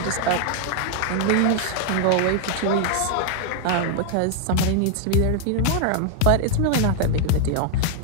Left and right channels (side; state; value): both; different; correlation 0.00